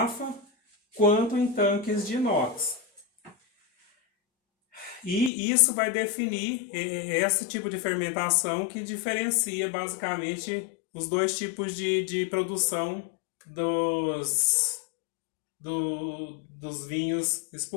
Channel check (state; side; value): drops out; right; at 5.3 s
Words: quanto em tanques de inox. E isso vai definir esse tipo de fermentação que diferencia basicamente os dois tipos de produção dos vinhos